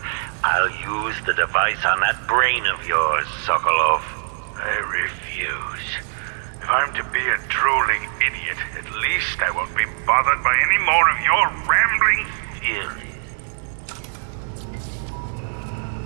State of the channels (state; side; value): silent; left; digital silence